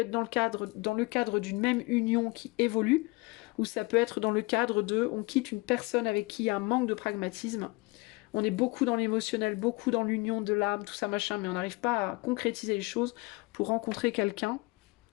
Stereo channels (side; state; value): right; quieter; 25.3 dB